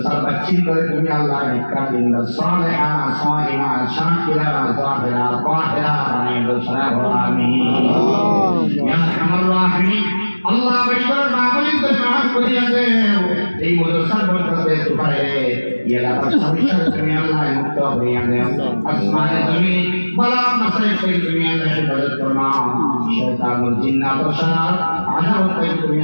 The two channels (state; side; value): inverted; both; correlation -1.00